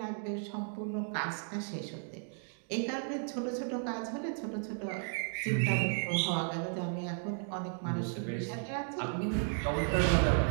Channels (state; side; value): silent; left; 55 dB below the other